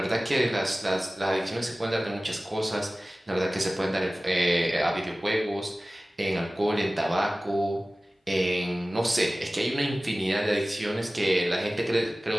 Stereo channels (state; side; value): normal; both; correlation 0.97